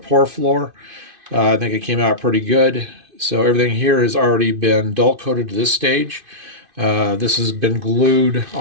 floor. I think it came out pretty good. So everything here has already been dull coated to this stage. This has been glued.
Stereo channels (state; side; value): late; left; 2.5 ms